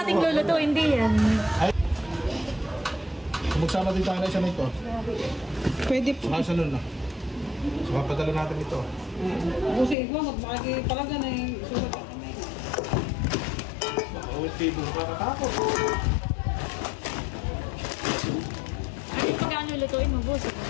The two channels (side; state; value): right; drops out; at 10.0 s